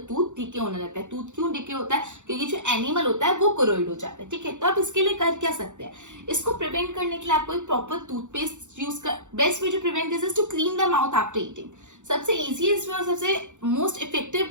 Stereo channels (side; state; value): left; late; 0.85 ms